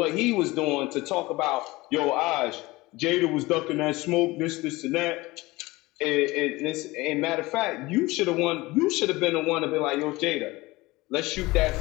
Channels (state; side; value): quieter; right; 20.8 dB